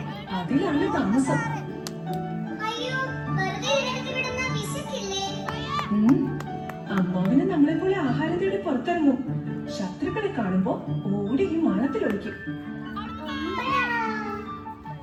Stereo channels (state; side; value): identical; both; correlation 1.00